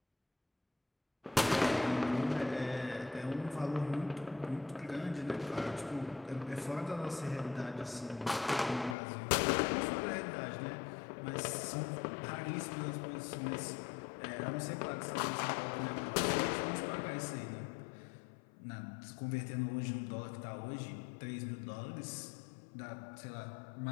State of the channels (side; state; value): right; drops out; at 9.0 s